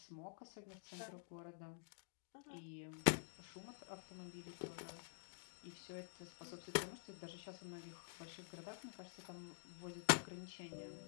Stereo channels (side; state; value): right; silent; digital silence